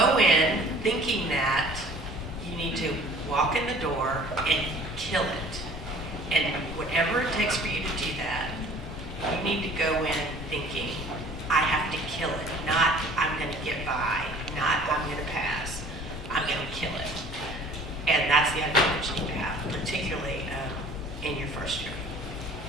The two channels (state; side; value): normal; both; correlation 0.49